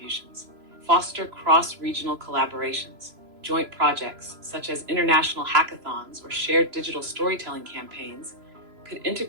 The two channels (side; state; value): left; late; 3.0 ms